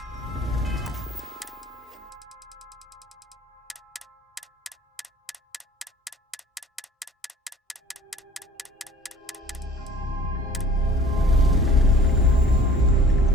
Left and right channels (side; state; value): both; normal; correlation 0.50